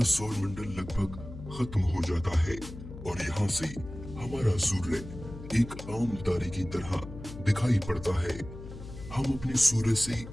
सौर मंडल लगभग खत्म हो जाता है और यहाँ से हमारा सूर्य एक आम तारे की तरह दिखाई पड़ता है। हम अपने सूर्य से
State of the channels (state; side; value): noise; left; hum, 12 dB below the sound